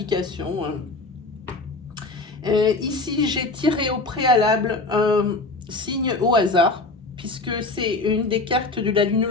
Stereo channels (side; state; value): right; quieter; 3.4 dB